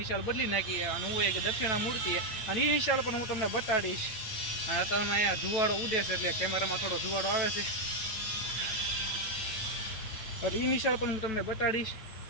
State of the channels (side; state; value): right; late; 9.1 ms